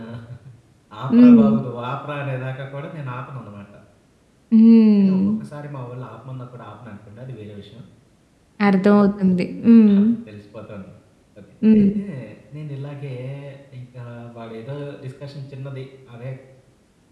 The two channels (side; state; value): both; identical; correlation 1.00